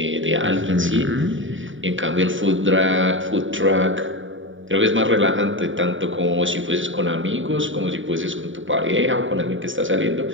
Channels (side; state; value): left; late; 0.56 ms